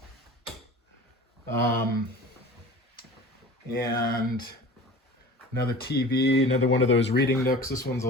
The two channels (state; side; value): normal; both; correlation 0.39